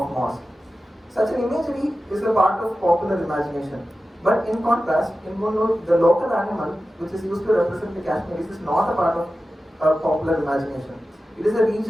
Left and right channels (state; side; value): normal; both; correlation 0.94